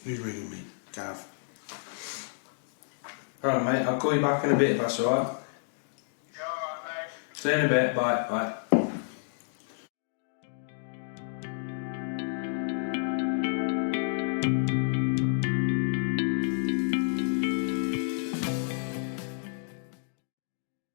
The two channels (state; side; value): silent; right; digital silence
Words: who's ringing me? Gav. Alright, mate, I'll call you back in a bit if that's alright. Yeah, alright, mate. See you in a bit, bye, bye.